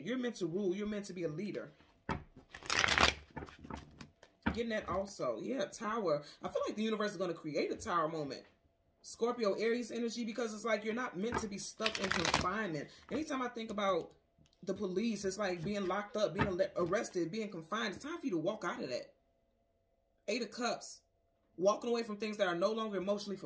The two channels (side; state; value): both; identical; correlation 1.00